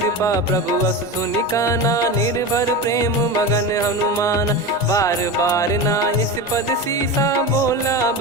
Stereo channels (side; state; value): both; normal; correlation 0.24